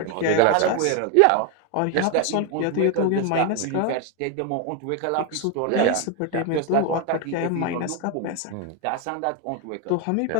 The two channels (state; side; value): different; both; correlation 0.01